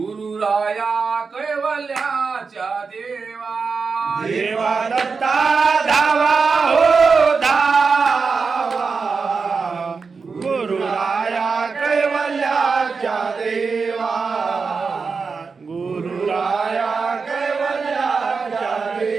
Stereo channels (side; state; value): left; quieter; 4.9 dB